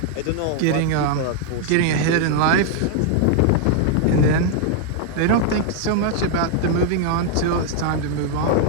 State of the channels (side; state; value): both; different; correlation 0.00